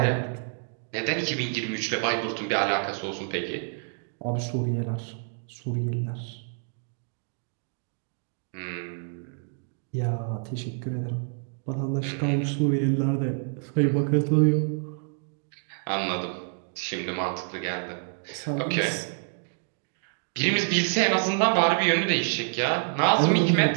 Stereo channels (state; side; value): silent; left; 56 dB below the other